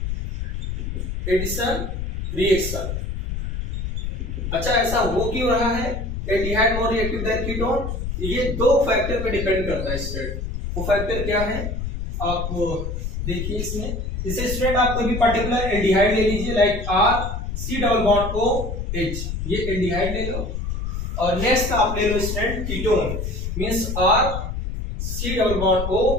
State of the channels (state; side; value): noise; left; rumble, 4 dB below the sound